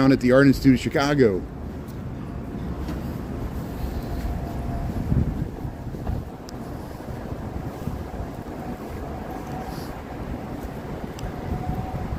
at the Art Institute of Chicago.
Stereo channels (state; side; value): identical; both; correlation 1.00